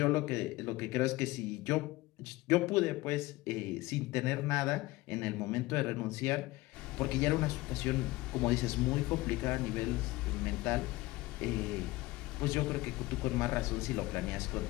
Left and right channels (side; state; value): right; quieter; 19.7 dB